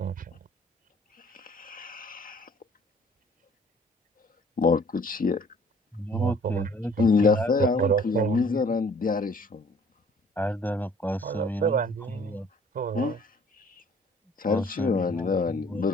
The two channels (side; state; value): both; normal; correlation 0.55